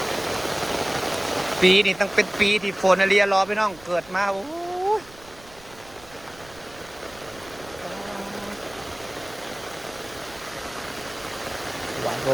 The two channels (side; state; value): right; noise; rumble, 22 dB below the sound